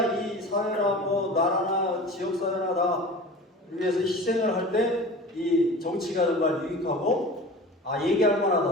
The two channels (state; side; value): normal; both; correlation 0.36